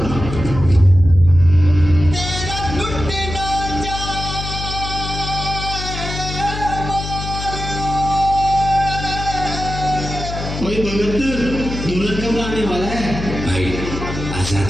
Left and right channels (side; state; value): left; noise; hum, 7 dB below the sound